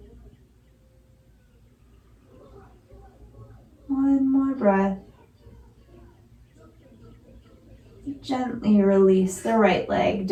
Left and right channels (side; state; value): both; identical; correlation 1.00